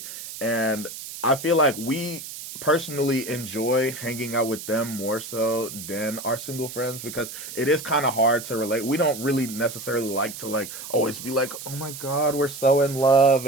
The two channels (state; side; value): noise; right; hiss, 11 dB below the sound